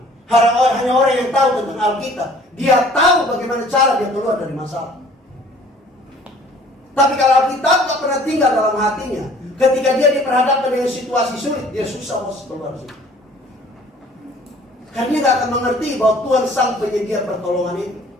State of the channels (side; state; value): both; normal; correlation 0.53